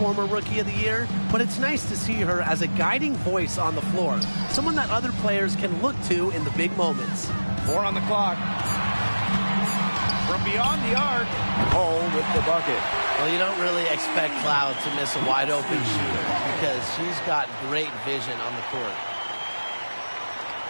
Rookie of the Year, but it's nice to see her as a guiding voice on the floor, someone that other players can look to in the big moments. 4 on the clock. From beyond the arc, Hull with the bucket. Well, you don't really expect Cloud to miss a wide-open shooter because she's got great vision on the court.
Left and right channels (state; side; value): inverted; both; correlation -1.00